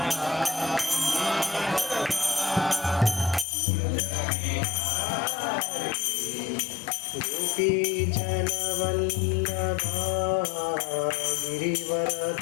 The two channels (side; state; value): right; drops out; at 3.5 s